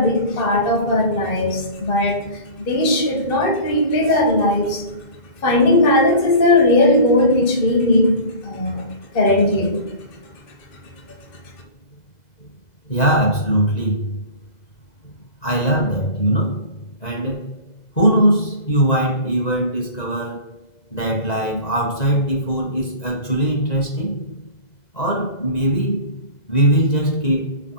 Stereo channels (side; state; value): right; late; 2.0 ms